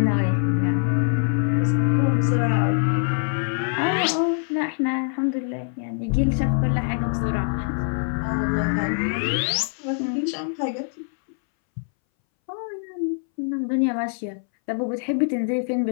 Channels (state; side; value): silent; right; 62 dB below the other